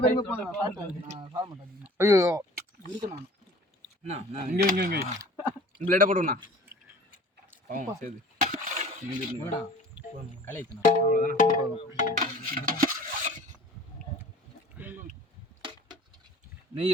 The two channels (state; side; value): normal; both; correlation 0.45